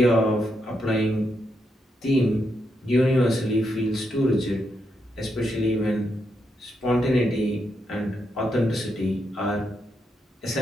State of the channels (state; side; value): normal; both; correlation 0.82